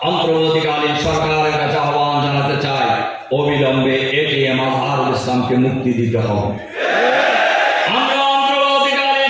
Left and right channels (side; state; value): both; identical; correlation 1.00